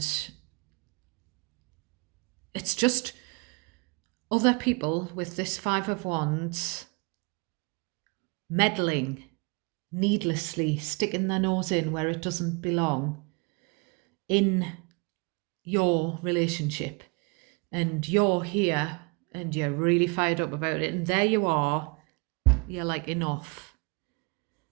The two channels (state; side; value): quieter; left; 30.9 dB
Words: it's just other people with this 5 of Wands meddling needlessly, sticking their nose in where it doesn't belong in your relationship. And you're here and you're really fired up about it. And there you are. You're like, enough.